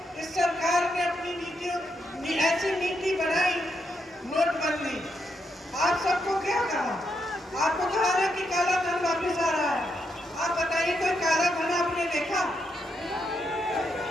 इस सरकार ने अपनी नीतियों ऐसी नीति बनाई, नोटबंदी। आप सबको क्या कहा? आपको कहा है कि काला धन वापस आ रहा है। आप बताइए, कोई काला धन आपने देखा?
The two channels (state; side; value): normal; both; correlation 0.80